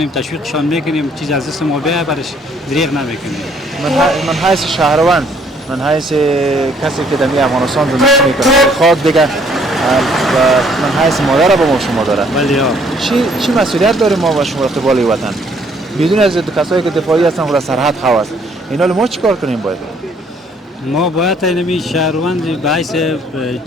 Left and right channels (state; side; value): normal; both; correlation 0.63